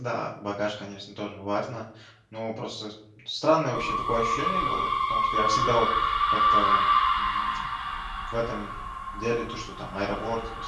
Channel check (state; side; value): identical; both; correlation 1.00